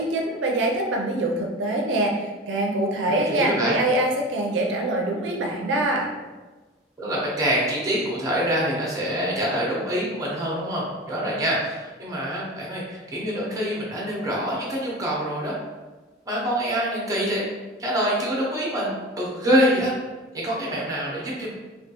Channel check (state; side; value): normal; both; correlation 0.30